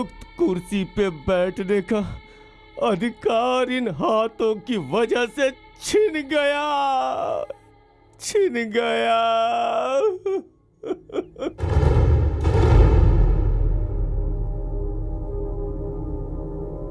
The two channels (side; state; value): both; identical; correlation 1.00